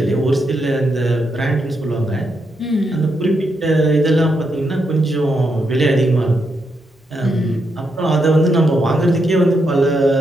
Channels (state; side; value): normal; both; correlation 0.81